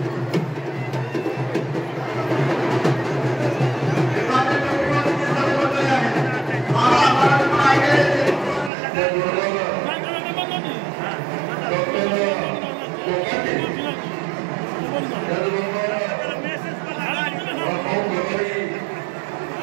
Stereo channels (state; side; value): drops out; left; at 8.7 s